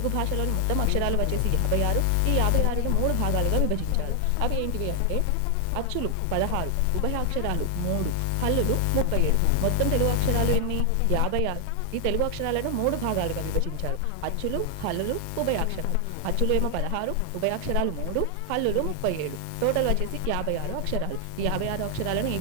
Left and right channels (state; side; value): different; both; correlation 0.00